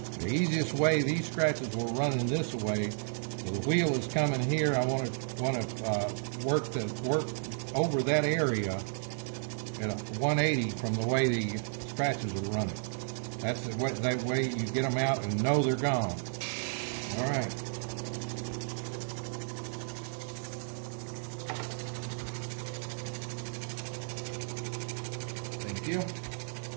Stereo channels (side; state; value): left; silent; 56 dB below the other